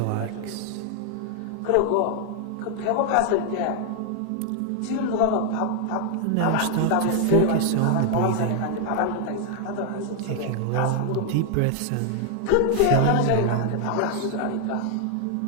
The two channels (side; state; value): both; different; correlation 0.00